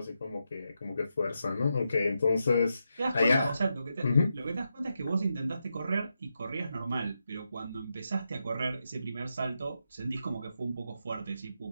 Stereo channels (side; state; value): both; inverted; correlation -0.85